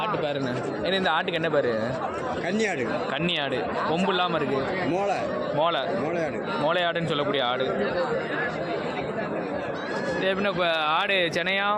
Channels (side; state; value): both; identical; correlation 1.00